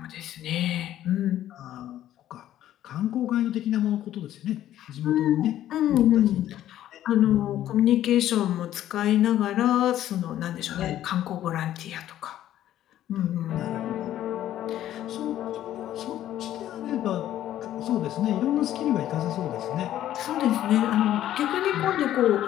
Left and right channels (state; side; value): quieter; right; 12.4 dB